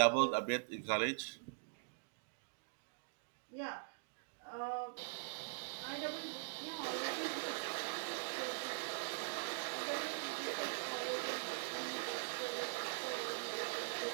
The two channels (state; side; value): silent; left; digital silence